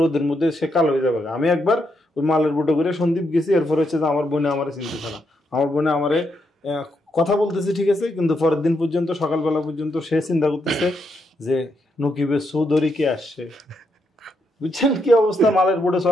রোদের মধ্যে সে কালো হয়ে যাবে। আমি একবার ওই মালের বোটে করে সন্দ্বীপ গেছি, এরপর হচ্ছে যে আমার বোনে আমারে চিনতেছে না, আমার বোনে আমারে কথা বলতেছে ঠিক আছে, কিন্তু পরের দিন পর্যন্ত সকালবেলা পর্যন্ত সে চিন্তা করতেছে যে নকিবের চৌধুরী কে আসছে। বুঝছেন কি অবস্থা মালের বোটে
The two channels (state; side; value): normal; both; correlation 0.80